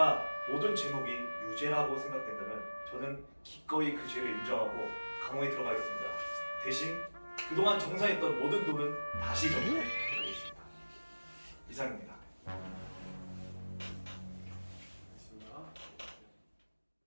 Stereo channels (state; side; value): inverted; both; correlation -1.00